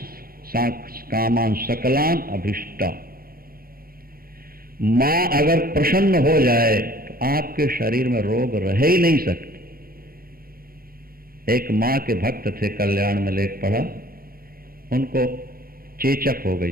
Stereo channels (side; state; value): left; late; 0.43 ms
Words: कामान सकलान अभिष्टा। मां अगर प्रसन्न हो जाए तो आपके शरीर में रोग रह ही नहीं सकते। एक मां के भक्त थे, कल्याण में लेख पढ़ा, उनको चेचक हो गई,